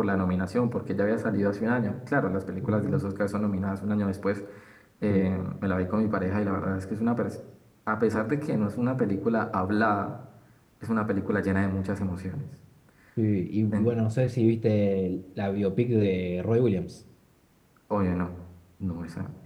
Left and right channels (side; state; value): both; identical; correlation 1.00